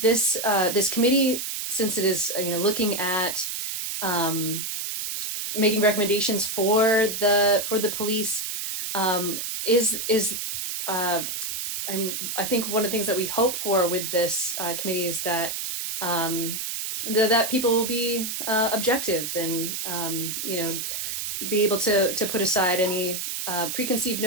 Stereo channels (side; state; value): right; noise; hiss, 4 dB below the sound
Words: committee, since it is looking at making recommendations for the police, I think one of the things that we hope for with this committee is that that people will be objective and be able to put aside any preconceived